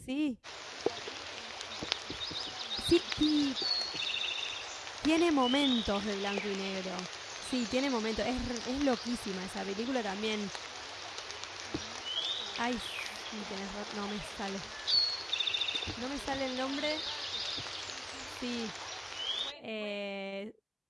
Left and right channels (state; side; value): identical; both; correlation 1.00